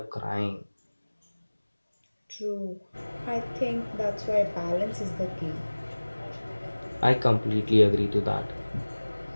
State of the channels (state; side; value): inverted; both; correlation -1.00